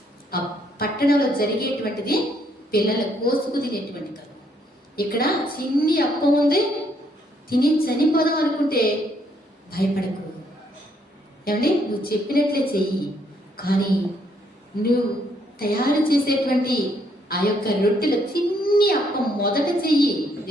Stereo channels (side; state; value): both; normal; correlation 0.70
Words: ఆ పట్టణంలో జరిగేటువంటిది పిల్లల కోసుకు తినేటువంటి కరువు. ఇక్కడ చిన్ని అప్పం ఉంది, తిని చనిపోదాం అనుకుంటే భయపడకు. ఏమండి నువ్వు చెప్పినట్లే చెయ్యి. కానీ నువ్వు తయారు చేసేటువంటి ఆ యొక్క రొట్టెల చిన్ని అప్పం మొదట చెయ్యి.